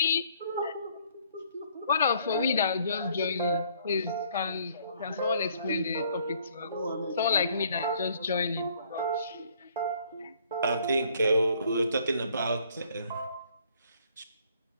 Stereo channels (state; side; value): inverted; both; correlation -0.63